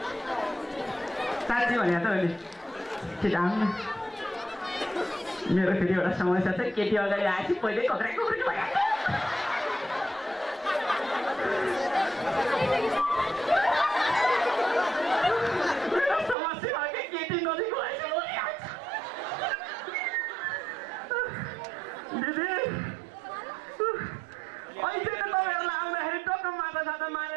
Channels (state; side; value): drops out; left; at 16.4 s